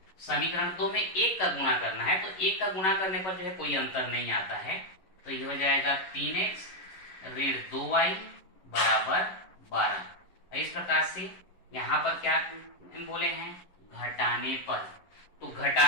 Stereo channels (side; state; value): right; late; 11 ms